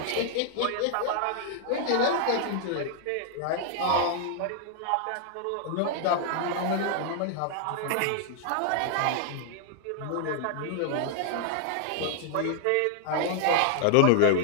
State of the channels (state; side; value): different; both; correlation 0.00